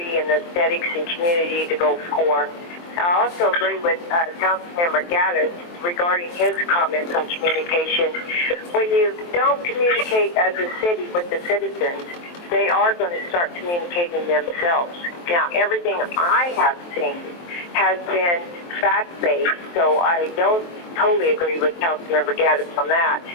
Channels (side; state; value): right; late; 23 ms